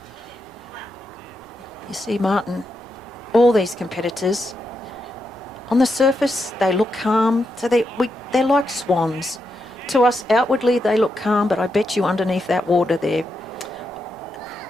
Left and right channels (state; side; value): normal; both; correlation 0.84